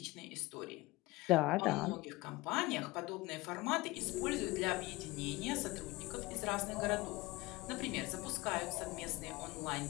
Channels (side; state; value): right; quieter; 21.4 dB